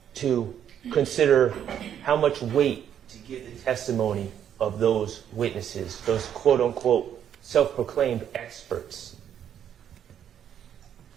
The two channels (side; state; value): left; quieter; 9.5 dB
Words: to consider how much weight to give the testimony of those witnesses, those quote-unquote self-proclaimed experts.